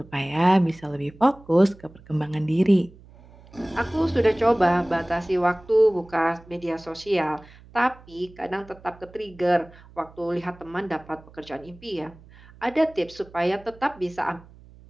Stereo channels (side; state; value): right; noise; hum, 23 dB below the sound